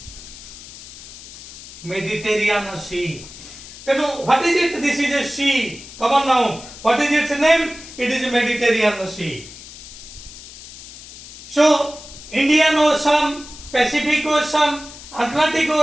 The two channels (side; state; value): left; noise; hiss, 16 dB below the sound